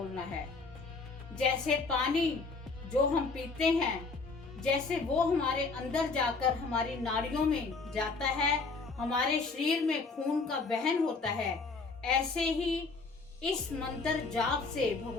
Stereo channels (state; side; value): quieter; right; 4.2 dB